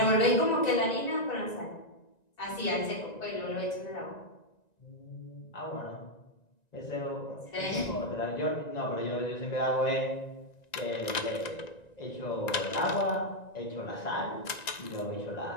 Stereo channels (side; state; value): right; late; 1.9 ms